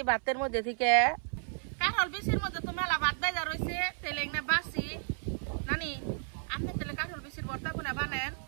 ভাতের মধ্যে থেকে কাঁঠাল বিচির মধ্যে তো মেলা ভাত বেজা রয়েছে তেলে না বাসি নানি আপনি তেলে কাঁঠাল বিচির ভর্তা কোনা বানেন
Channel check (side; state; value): left; silent; 56 dB below the other